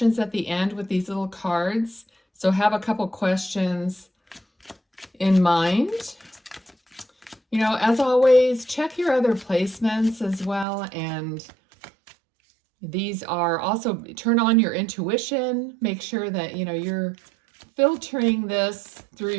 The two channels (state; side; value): drops out; left; at 10.7 s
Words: at the end with these little cards, so have a couple questions in mind. You know, as always, check your other placements as well, and these are also, turn on your intuition. Make sure that, you know, you're filtering this through